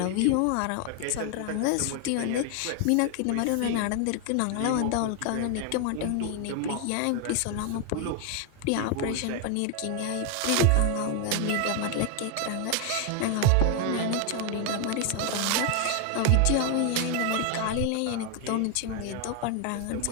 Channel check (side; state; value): both; different; correlation 0.01